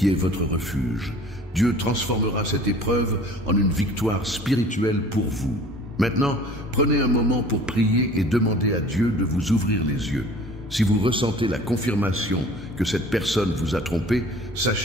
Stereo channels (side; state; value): both; normal; correlation 0.47